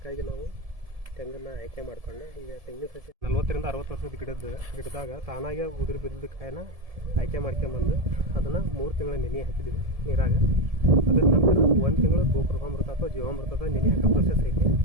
ನಾವು ತೆಂಗನ್ನು ಆಯ್ಕೆ ಮಾಡಿಕೊಂಡು ಈಗ ತೆಂಗಿನ ಸಸಿ 40 ರಿಂದ 60 ವರ್ಷದ ಗಿಡದಾಗ ತಾನಾಗೆ ಉದುರು ಬಿದ್ದ ಕಾಯಿನ ಆಯ್ಕೆ ಮಾಡ್ಕೊಂಬಂದು ಅದನ್ನು 3 ತಿಂಗಳ ನೆನೆ ಹಾಕಿದ್ದೀವಿ ನೀರಾಗ. ಅದ್ರ ನಂತರ 1 ತಿಂಗಳು ಗೋಕೃಪಾಮೃತ ಅಥವಾ ಜೀವಾಮೃತದ ನೆನೆ ಹಾಕೋ ಪ್ರೊಸೆಸ್ ಐತಿ.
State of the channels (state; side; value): late; left; 1.7 ms